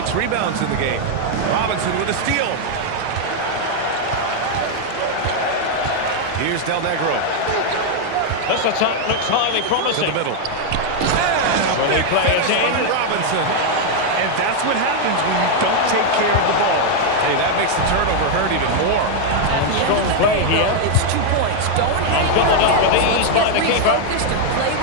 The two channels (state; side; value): different; both; correlation 0.00